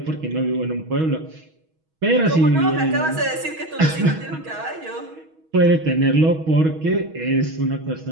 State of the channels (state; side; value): late; left; 6.3 ms